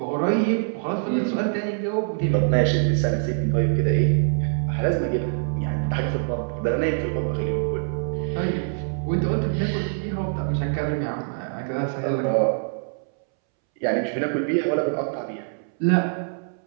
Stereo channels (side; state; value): left; silent; 62 dB below the other